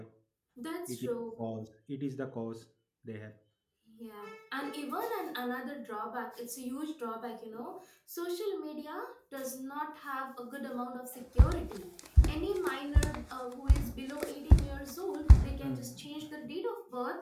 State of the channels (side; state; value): both; identical; correlation 1.00